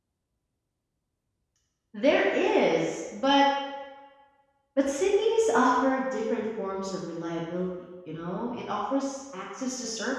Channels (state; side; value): identical; both; correlation 1.00